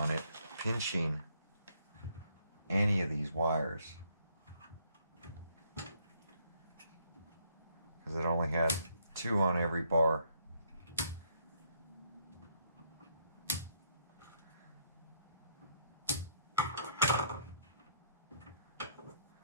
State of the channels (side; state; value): both; inverted; correlation -0.70